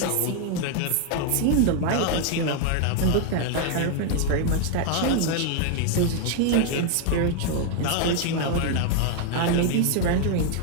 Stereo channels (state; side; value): different; both; correlation 0.00